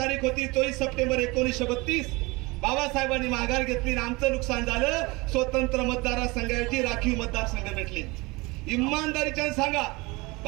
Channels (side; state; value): left; quieter; 24.1 dB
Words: होती 24 सप्टेंबर 1932. बाबासाहेबांनी माघार घेतली आणि आमचं नुकसान झालं. स्वतंत्र मतदारसंघाची राखीव मतदारसंघ भेटले. इमानदारीच्या सांगा,